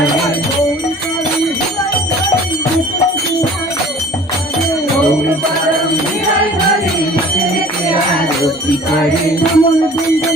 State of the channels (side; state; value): both; normal; correlation 0.47